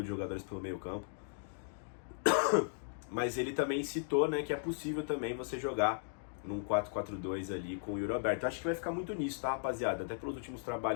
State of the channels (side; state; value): right; silent; digital silence